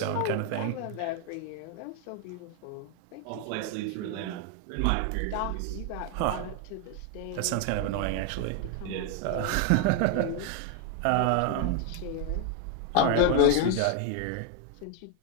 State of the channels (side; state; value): both; different; correlation 0.01